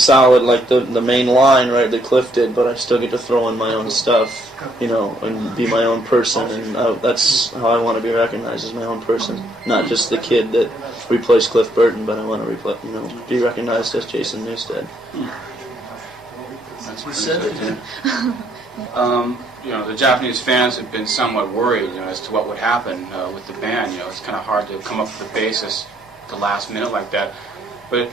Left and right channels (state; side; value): normal; both; correlation 0.70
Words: like the main line, right, that Cliff did, but I still get to throw in my own stuff, and be my own person, and that's how I want to be recognized, as my own person, not just the kid that replaced Cliff Burton, but I want to be recognized as Jason Newsted. That's what he said. The Japanese fans have been somewhat worried, as to what would happen with the band. It's kind of hard to come up with a basis at the last minute like that. But